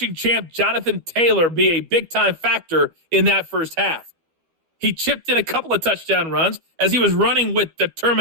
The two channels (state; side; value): late; left; 12 ms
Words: champ Jonathan Taylor be a big-time factor in that first half. He chipped in a couple of touchdown runs as he was running with